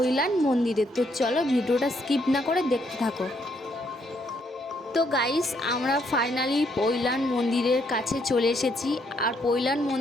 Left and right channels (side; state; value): both; normal; correlation 0.72